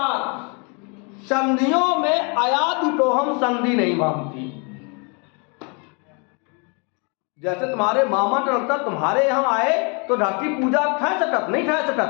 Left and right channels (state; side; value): quieter; right; 34.2 dB